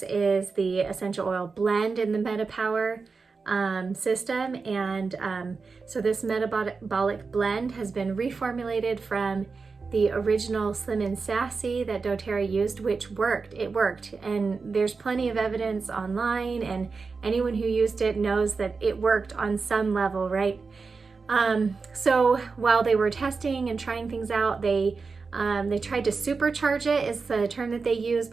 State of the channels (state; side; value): quieter; left; 4.6 dB